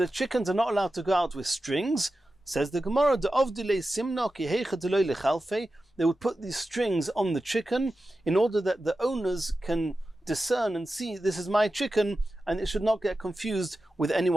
chickens are not allowed to go out with strings. Says the Gemara, they would put these strings on the chicken in order that the owners can discern and see, this is my chicken, and it should not get confused with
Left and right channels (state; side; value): normal; both; correlation 0.93